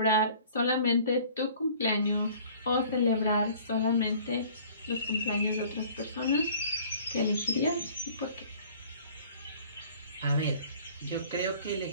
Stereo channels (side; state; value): both; inverted; correlation -0.50